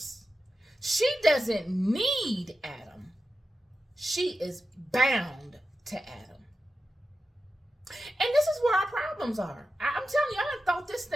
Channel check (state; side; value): normal; both; correlation 0.91